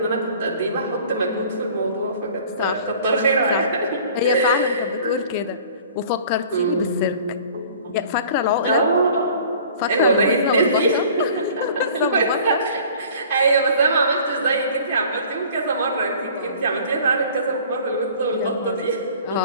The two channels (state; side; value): inverted; both; correlation -0.48